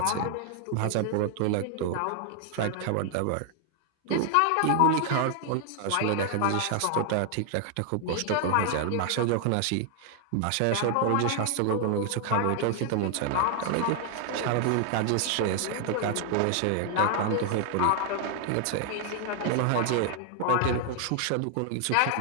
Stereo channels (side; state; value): both; different; correlation 0.00